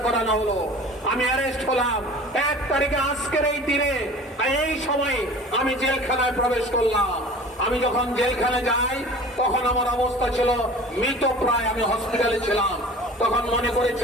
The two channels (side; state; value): both; normal; correlation 0.42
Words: করানো হলো। আমি অ্যারেস্ট হলাম 1 তারিখে, আজকের এই দিনে এই সময় আমি জেলখানায় প্রবেশ করলাম। আমি যখন জেলখানে যাই তখন আমার অবস্থা ছিল মৃত প্রায়। আমি হসপিটালে ছিলাম, তখন মনে